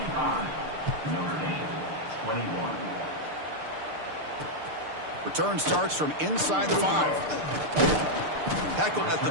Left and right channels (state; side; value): late; left; 6.7 ms